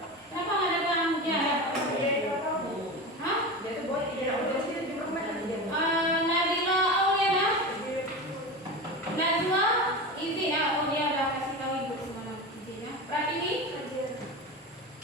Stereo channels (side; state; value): both; normal; correlation 0.25